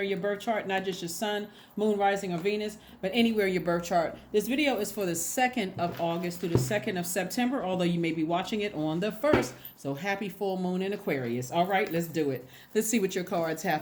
in your birth chart, not just your sun, moon, rising, or Venus, but anywhere in your birth chart. This video is for the 2nd of August through the 2nd of September, although you may be watching it on the 1st. So happy full moon in Aquarius. All right, let's do it. Let's see what your cards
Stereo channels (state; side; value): identical; both; correlation 1.00